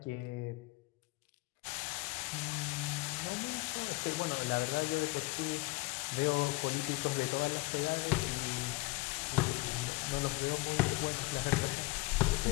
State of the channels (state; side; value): quieter; right; 23.7 dB